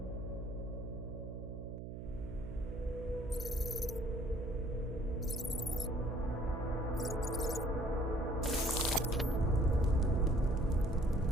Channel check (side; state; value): right; noise; hum, 8 dB below the sound